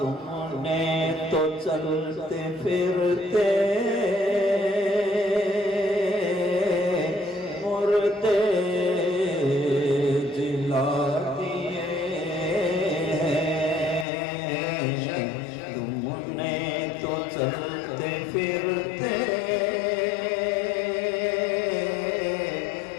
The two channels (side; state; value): right; drops out; at 14.1 s